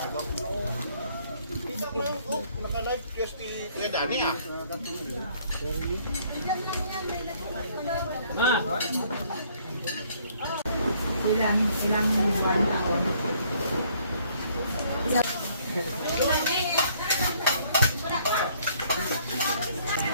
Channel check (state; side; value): inverted; both; correlation -0.63